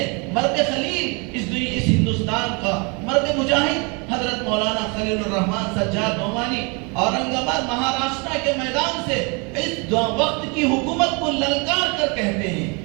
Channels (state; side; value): quieter; left; 31.4 dB